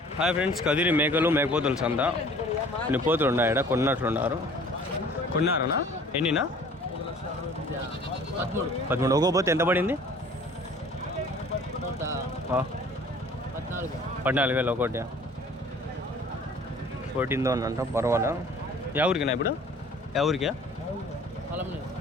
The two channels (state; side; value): normal; both; correlation 0.50